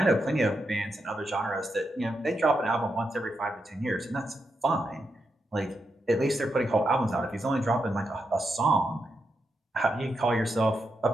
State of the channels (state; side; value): normal; both; correlation 0.84